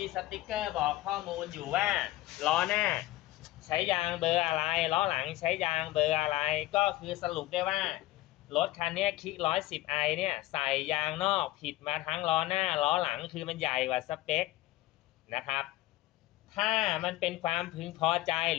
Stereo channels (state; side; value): quieter; right; 16.8 dB